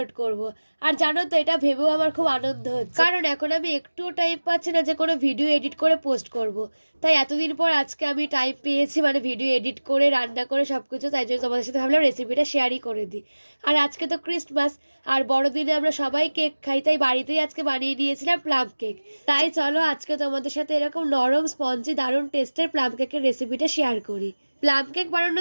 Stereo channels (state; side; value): inverted; both; correlation -1.00